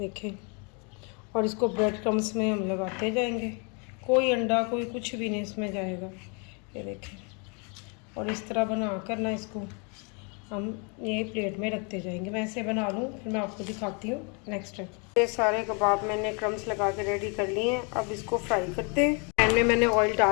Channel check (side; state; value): right; quieter; 34.9 dB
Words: और इसको ब्रेड क्रम्स में हम लगाते जाएंगे, कोई अंडा कोई कुछ भी नहीं इसमें जाएगा, ये देखें। और इस तरह बना कर ना इसको हम ये प्लेट में रखते जाएंगे। मैं ऐसे बना लूँ फिर मैं आपको दिखाती हूँ नेक्स्ट स्टेप। ये सारे कबाब मैंने क्रम्स लगा के रेडी कर लिए हैं। अब इसको फ्राई करते हैं। पैन में मैंने ऑयल